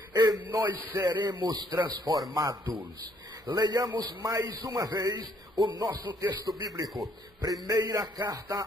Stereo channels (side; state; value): both; normal; correlation 0.66